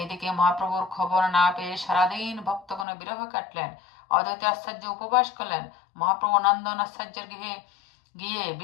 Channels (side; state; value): right; drops out; at 2.9 s